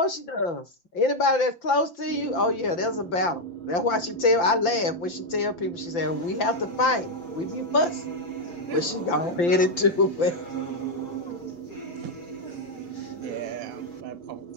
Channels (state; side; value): late; right; 5.8 ms